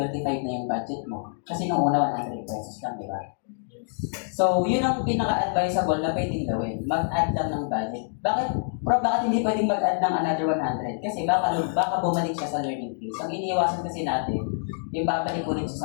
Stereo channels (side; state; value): right; silent; digital silence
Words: na yung budget mo. Kasi nung una, 100 pesos lang, di ba? So, yun ang pinaka-advisable na pwedeng gawin. Mag-add lang ng budget. Bakit hindi pwedeng mag-add ng another 100? Kasi baka bumalik siya sa learning phase. Ang iniiwasan kasi natin, yung babalik ulit siya